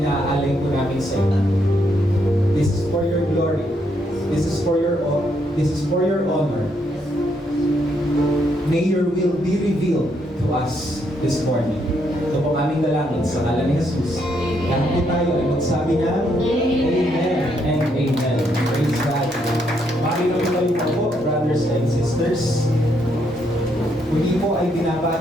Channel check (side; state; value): both; normal; correlation 0.75